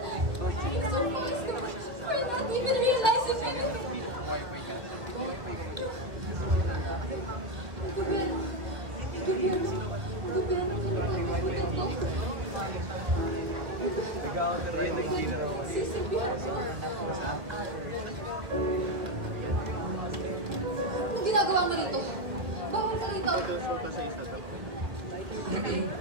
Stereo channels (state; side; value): late; left; 1.4 ms